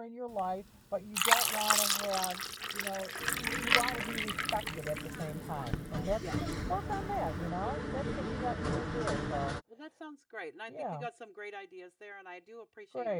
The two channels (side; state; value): both; identical; correlation 1.00